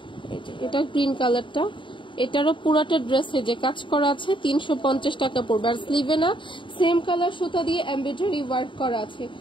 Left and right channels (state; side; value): late; right; 0.24 ms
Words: এই যে এটা গ্রিন কালারটা, এটারও পুরাটা ড্রেসে যে কাজ করা আছে 350 টাকা পড়বে। আর স্লিভে না সেম কালার সুতা দিয়ে এমব্রয়ডারি ওয়ার্ক করা আছে,